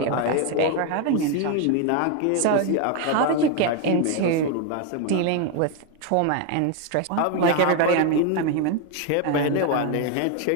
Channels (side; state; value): both; different; correlation 0.01